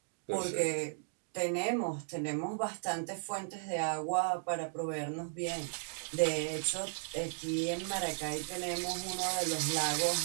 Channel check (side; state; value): left; silent; digital silence